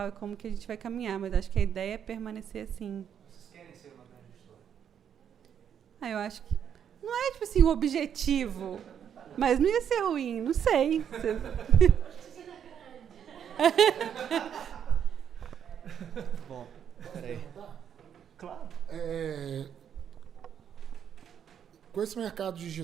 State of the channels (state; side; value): quieter; left; 8.6 dB